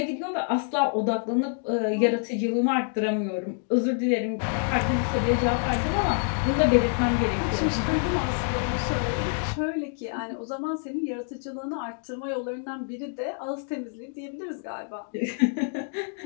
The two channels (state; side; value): silent; right; 60 dB below the other